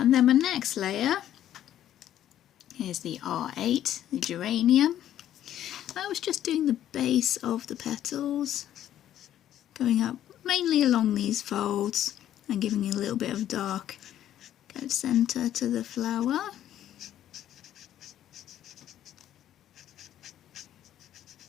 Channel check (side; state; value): right; quieter; 11.6 dB